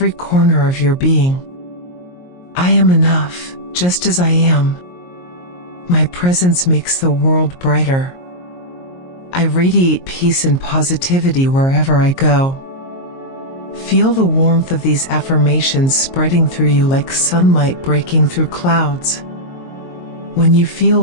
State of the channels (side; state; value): right; late; 22 ms